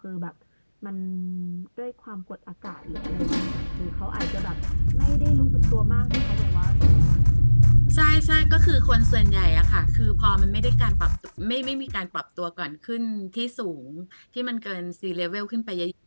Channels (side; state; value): both; inverted; correlation -1.00